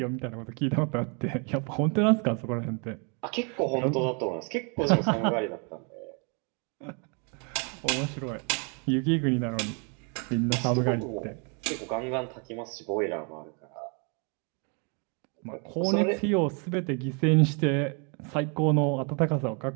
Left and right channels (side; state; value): left; quieter; 36.1 dB